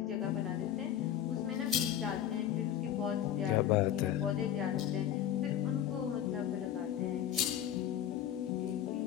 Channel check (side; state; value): right; quieter; 10.7 dB